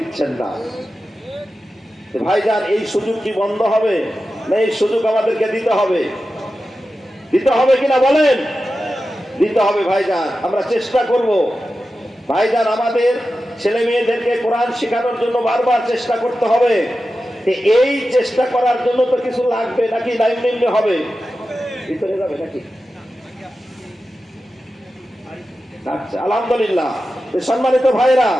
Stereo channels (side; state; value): both; normal; correlation 0.92